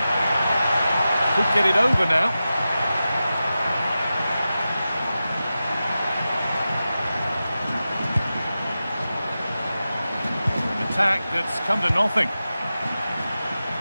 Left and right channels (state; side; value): inverted; both; correlation -0.93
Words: Could get it over now. An attack that's come to nothing.